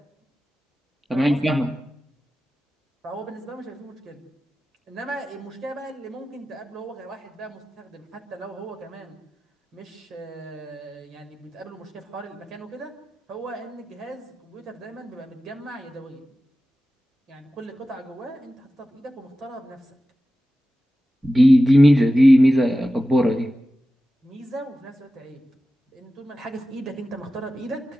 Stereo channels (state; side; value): normal; both; correlation 0.94